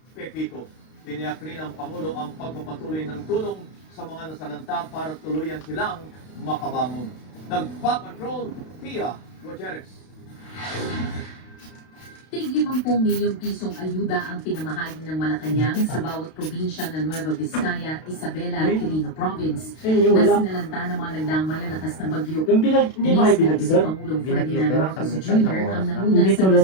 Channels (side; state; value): right; late; 32 ms